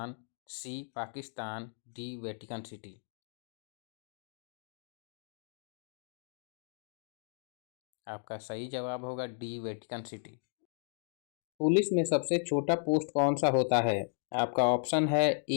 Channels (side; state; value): right; silent; digital silence